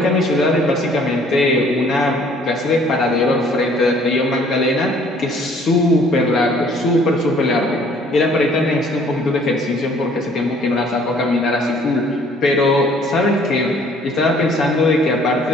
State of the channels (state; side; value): normal; both; correlation 0.58